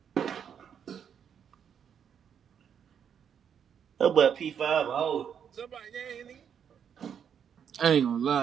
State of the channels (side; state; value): left; quieter; 8.0 dB